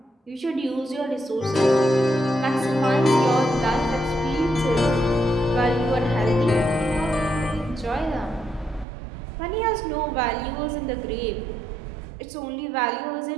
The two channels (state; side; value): drops out; left; at 8.8 s